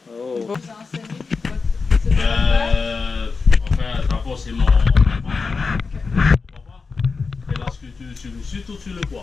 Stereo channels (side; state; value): right; quieter; 4.6 dB